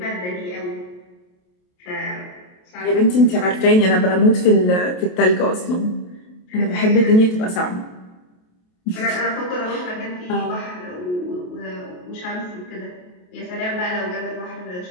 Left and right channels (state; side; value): late; right; 28 ms